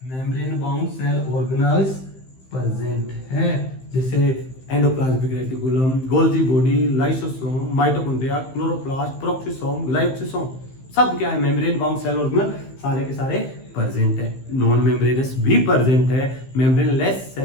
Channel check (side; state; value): right; late; 15 ms